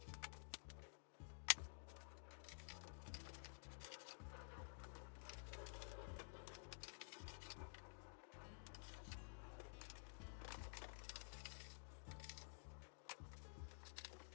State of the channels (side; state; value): right; silent; digital silence